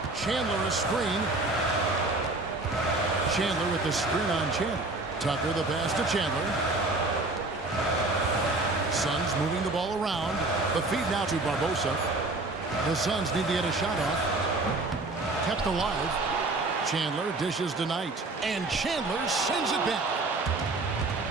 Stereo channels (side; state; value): left; quieter; 3.1 dB